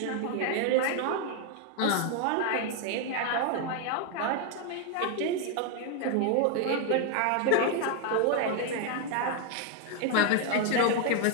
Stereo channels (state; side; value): different; both; correlation 0.01